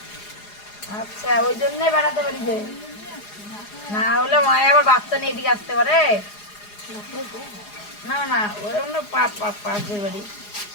আচ্ছা, ওই জন্যই বেড়াতে পারি যে, না হলে মায়ে আবার বাচ্চা নিয়ে এদিকে আসতে পারে না। না ওই অন্য পাশের বাড়ি।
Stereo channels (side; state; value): right; late; 4.8 ms